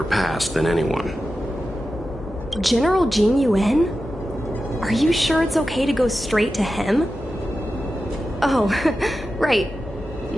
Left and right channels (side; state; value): both; normal; correlation 0.92